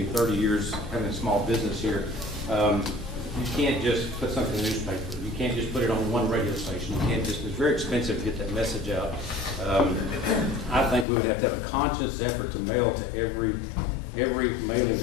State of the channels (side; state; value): right; drops out; at 11.1 s